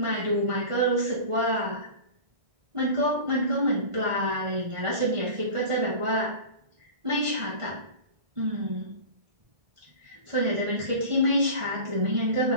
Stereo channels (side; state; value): left; late; 1.6 ms